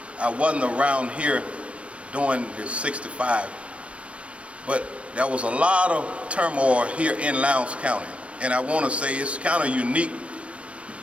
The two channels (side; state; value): left; late; 0.061 ms